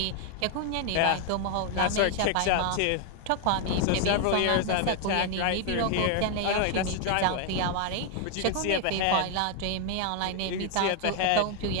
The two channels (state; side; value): different; both; correlation 0.01